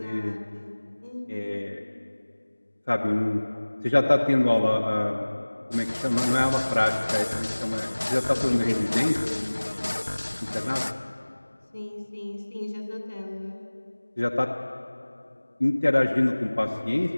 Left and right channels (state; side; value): inverted; both; correlation -1.00